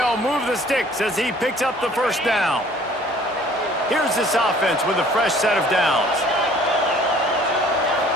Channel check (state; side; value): normal; both; correlation 0.54